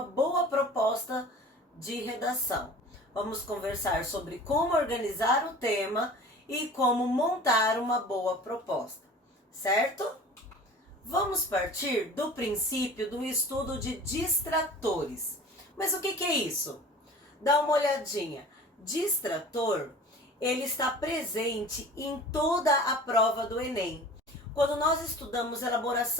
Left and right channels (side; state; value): both; normal; correlation 0.42